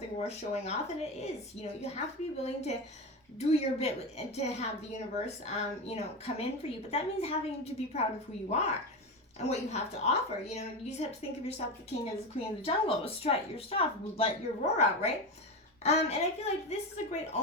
worth showing off, and it is. You know, you have to be willing to do your bit and to have the universe, you know, come in for you. But that means having to be proud of who you are and what you have to offer. You know, you just have to think of yourself the king as the queen of the jungle. Strut your stuff, let your roar out, right? And I feel like this is a great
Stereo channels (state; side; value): normal; both; correlation 0.19